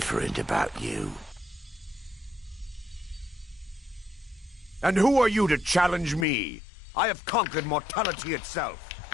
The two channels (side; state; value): right; drops out; at 6.2 s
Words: about you. And who are you to challenge me? I have conquered mortality itself.